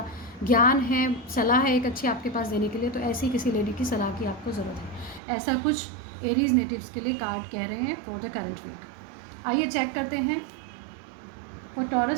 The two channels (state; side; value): drops out; left; at 5.2 s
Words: ज्ञान है, सलाह है एक अच्छी आपके पास देने के लिए, तो ऐसी किसी लेडी की सलाह की आपको ज़रूरत है। ऐसा कुछ एरीज नेटिव्स के लिए कार्ड कह रहे हैं फॉर द करंट वीक। आइए चेक करते हैं for